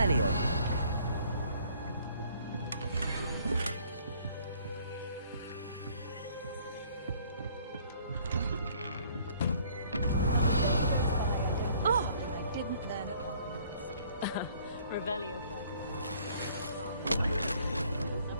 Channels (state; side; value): inverted; both; correlation -0.59